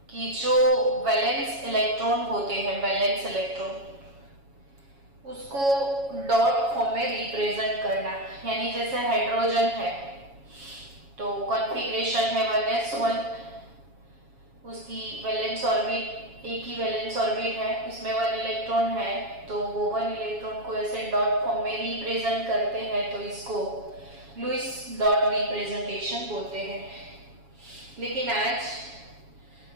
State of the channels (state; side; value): late; left; 7.2 ms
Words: कि जो वैलेंस इलेक्ट्रॉन होते हैं, वैलेंस इलेक्ट्रॉन, उसको डॉट फॉर्म में रिप्रेजेंट करना। यानी जैसे हाइड्रोजन है तो कॉन्फ़िगरेशन है 1s1, उसकी वैलेंस ऑर्बिट एक ही वैलेंस ऑर्बिट है, उसमें 1 इलेक्ट्रॉन है, तो वो 1 इलेक्ट्रॉन को ऐसे डॉट फॉर्म में रिप्रेजेंट करते हैं, तो इसको लुईस डॉट रिप्रेजेंटेशन बोलते हैं। लेकिन आज